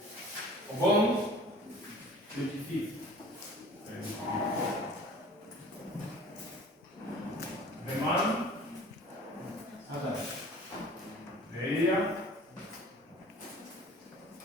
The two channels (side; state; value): both; normal; correlation 0.46